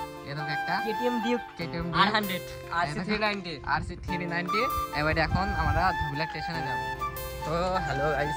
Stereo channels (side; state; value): both; identical; correlation 1.00